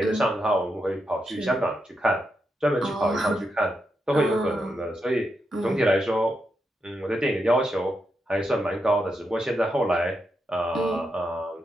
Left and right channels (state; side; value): normal; both; correlation 0.84